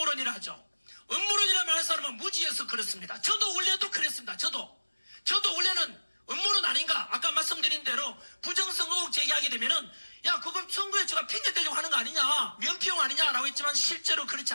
하죠. 음모론이라 말하는 사람은 무지해서 그렇습니다. 저도 원래도 그랬습니다. 저도 원래는 음모론 아닌가? 아까 말씀드린 대로 부정선거 의혹 제기하게 되면은 야 그거 선거에 제가 핑계 대려고 하는 거 아니냐, 면피용 아니냐라고 했지만 실제로 그렇지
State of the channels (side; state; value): both; inverted; correlation -1.00